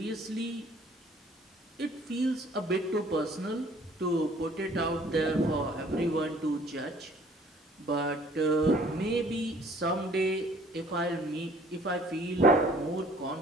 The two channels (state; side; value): normal; both; correlation 0.56